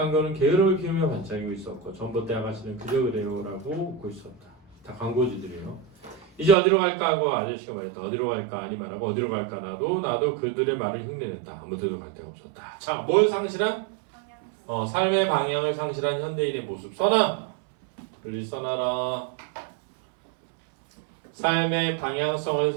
게으름을 피우며 반짝이고 있었고 전봇대 아가씨는 그저 그래요라고 웃고 있었다. 다 광고주들이에요. 이제 어디로 갈까 하고 아저씨가 말했다. 어디로 갈까 아니 말하고 어디로 갈까 나도 그들의 말을 흉내냈다. 아무 데도 갈 데가 없었다. 자, 뭘 상실한? 삶의 방향을 상실한 현대인의 모습. 써놔. 빨리 써놔라. 삶의 방향성을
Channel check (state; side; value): drops out; left; at 6.6 s